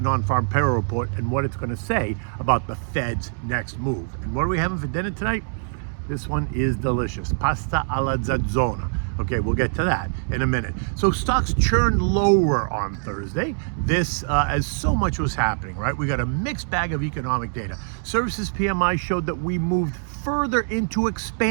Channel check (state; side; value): silent; left; digital silence